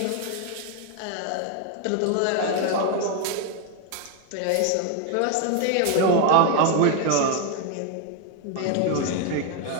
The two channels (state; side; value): different; both; correlation 0.01